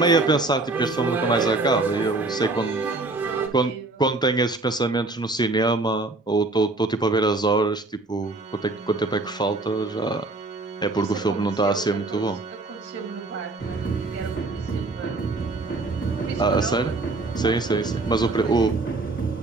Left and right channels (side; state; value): left; quieter; 3.2 dB